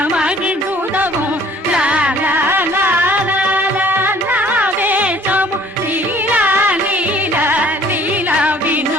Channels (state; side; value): normal; both; correlation 0.55